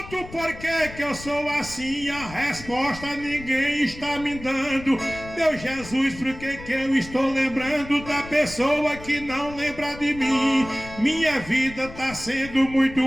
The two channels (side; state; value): left; noise; rumble, 15 dB below the sound